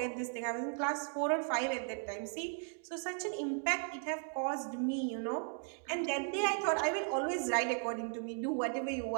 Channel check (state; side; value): silent; left; 53 dB below the other